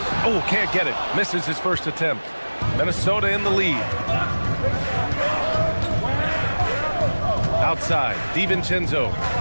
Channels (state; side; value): inverted; both; correlation -1.00